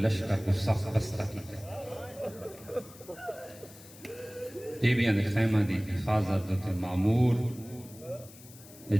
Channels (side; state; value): left; noise; hiss, 20 dB below the sound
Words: کو سخت بستہ کی بیبیاں دے خیمہ دی حفاظت دے معمور یہ